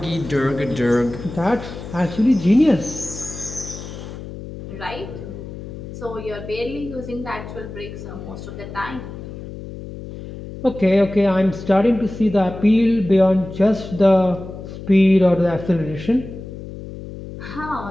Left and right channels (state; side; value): noise; left; hum, 11 dB below the sound